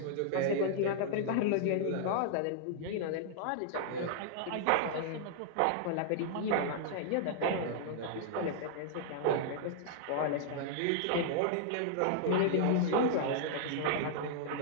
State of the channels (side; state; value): both; different; correlation -0.01